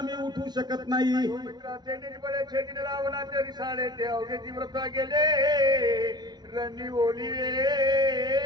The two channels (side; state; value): left; late; 0.20 ms